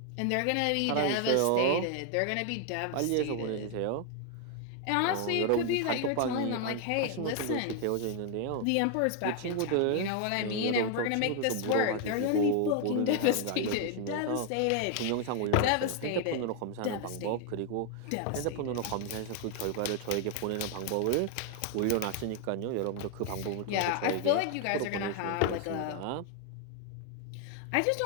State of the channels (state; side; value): different; both; correlation 0.00